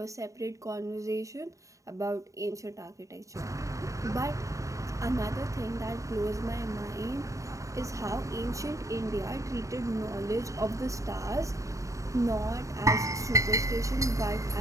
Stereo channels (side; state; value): left; late; 0.16 ms